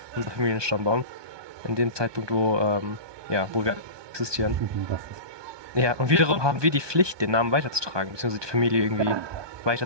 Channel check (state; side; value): late; left; 1.2 ms